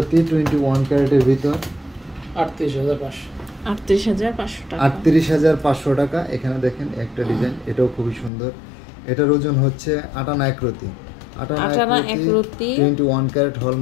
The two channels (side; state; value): right; drops out; at 8.3 s